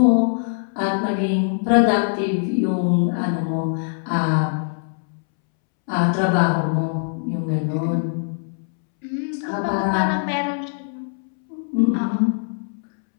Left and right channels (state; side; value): silent; right; 64 dB below the other